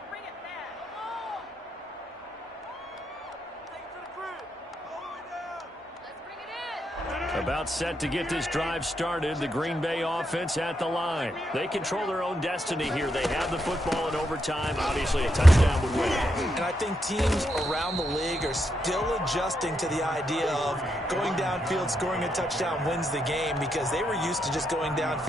About set to get this drive started. The Green Bay offense at the line. They control their own destiny here. They have the football in overtime. Obviously, a touchdown would win. And I think teams around the league are still adjusting to the idea of going downfield, scoring a touchdown wins the game, because they were used to just going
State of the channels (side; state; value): both; normal; correlation 0.81